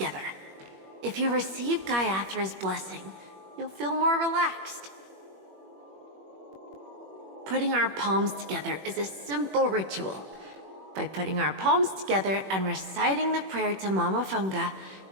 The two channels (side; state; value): left; late; 21 ms